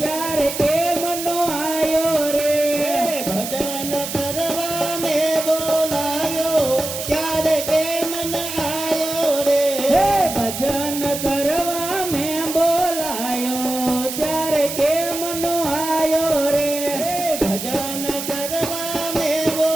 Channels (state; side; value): noise; right; hiss, 6 dB below the sound